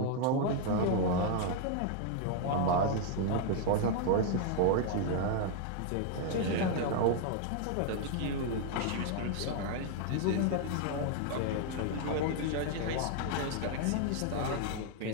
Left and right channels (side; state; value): both; different; correlation 0.00